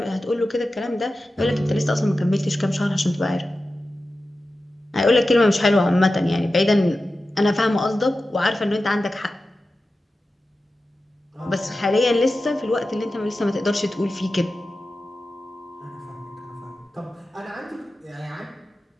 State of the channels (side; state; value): both; normal; correlation 0.93